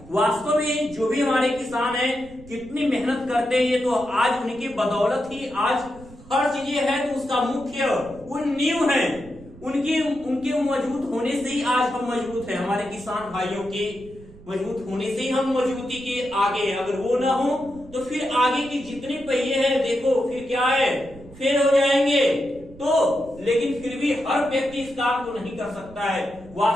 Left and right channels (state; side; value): noise; right; rumble, 20 dB below the sound